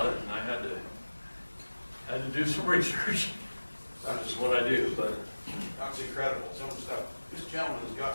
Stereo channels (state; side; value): inverted; both; correlation -1.00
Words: it, and I had to do some research. That's just what I do, but That's incredible. Some of the stuff. This gentleman has